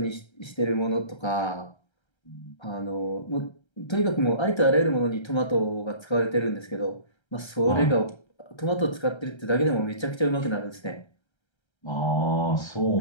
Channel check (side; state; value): right; late; 1.3 ms